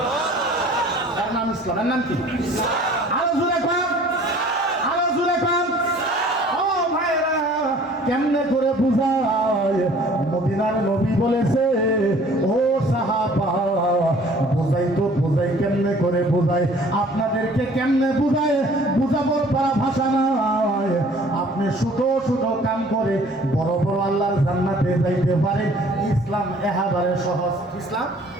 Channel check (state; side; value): normal; both; correlation 0.52